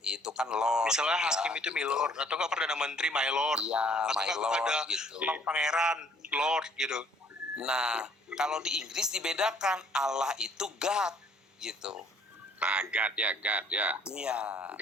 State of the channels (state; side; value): normal; both; correlation 0.60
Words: itu kan Lord. Misalnya hakim itu milord, atau nggak perdana menteri my lord, atau my lord ada gitu. pangeran lord gitu. Nah, kalau di Inggris dibedakan, Allah itu God gitu. Nah, God ya. Iya.